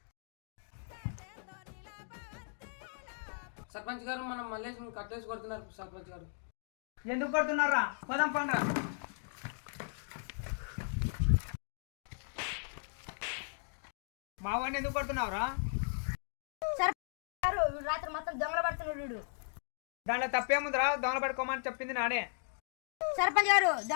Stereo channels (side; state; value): right; silent; digital silence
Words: సర్పంచ్ గారు, మనం మల్లేష్ని కట్టేసి కొడుతున్నారు. సర్పంచ్ గారు ఎందుకు కొడుతున్నారా? పోదాం పండ్రా. మా వాడిని ఎందుకు కొడుతున్నావురా? రాత్రి మొత్తం దొంగలు పడుతున్నాడు. దాంట్లో తప్పేముందిరా? దొంగలు పట్టుకోమని చెప్పింది నానే. సర్పంచ్ గారు,